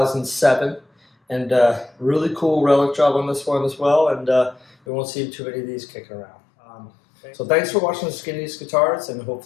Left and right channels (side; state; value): right; drops out; at 4.8 s